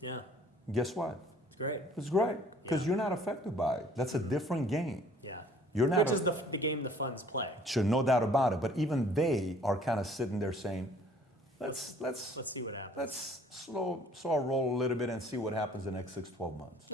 guess what? It's great. It's great because you're not affected by it. That's a different game. Yeah. You're not. Which is the game the funds play. Sure, no doubt about it. But even they are kind of sitting there saying, let's see what happens. Let's slow our roll a little bit and see what happens in the next 6-12 months.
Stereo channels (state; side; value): normal; both; correlation 0.55